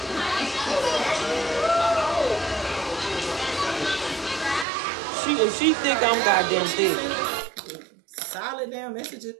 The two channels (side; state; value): left; drops out; at 4.7 s